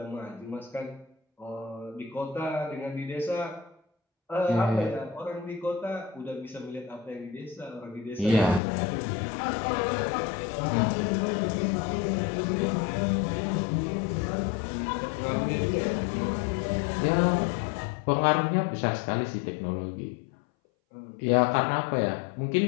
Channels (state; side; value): drops out; right; at 8.6 s